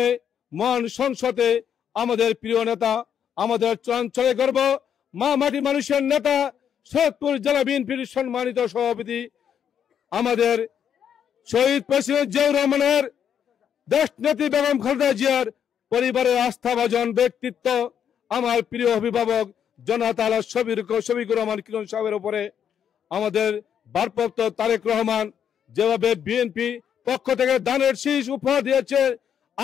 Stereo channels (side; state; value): right; quieter; 8.5 dB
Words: মহান সংসদে আমাদের প্রিয় নেতা, আমাদের চঞ্চলে গর্ব, মা মাটি মানুষের নেতা, সৈয়দপুর জেলা বিএনপির সম্মানিত সভাপতি, আমাদের শহীদ প্রেসিডেন্ট জিয়াউর রহমানের দেশনেত্রী বেগম খালেদা জিয়ার পরিবারের আস্থাভাজন ব্যক্তিত্ব, আমার প্রিয় অভিভাবক জনতা শফিকুর রহমান কিরণ সাহেবের উপরে আমাদের ভারপ্রাপ্ত তারেক রহমান যেভাবে বিএনপি পক্ষ থেকে দানের শীষ উপহার দিয়েছে,